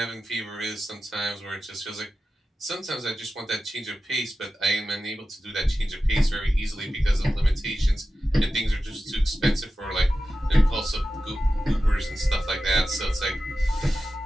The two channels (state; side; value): normal; both; correlation 0.93